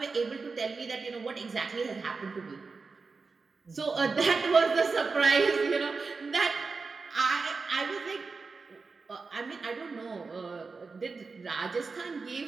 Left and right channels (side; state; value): left; quieter; 4.4 dB